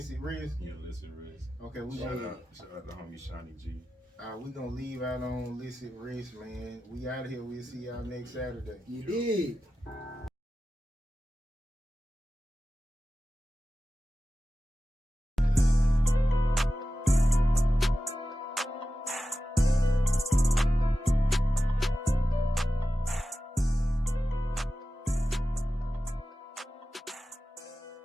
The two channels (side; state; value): both; normal; correlation 0.94